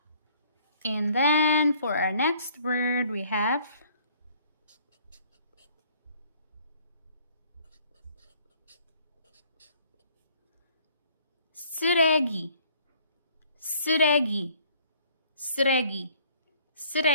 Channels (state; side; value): inverted; both; correlation -0.59